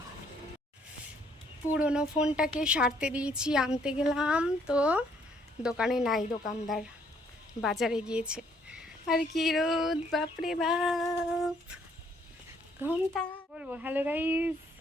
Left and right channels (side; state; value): both; normal; correlation 0.66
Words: পুরনো ফোনটাকে সারতে দিয়েছি, আনতে গেলাম তো দোকানে নাই, দোকানদার বাজারে গিয়েছে। আর কি রোদ বাপরে বাপ, ঘন্টা বলবো। Hello guys,